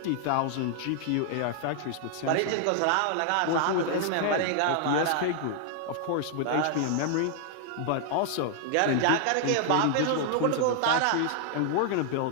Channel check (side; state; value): both; different; correlation -0.01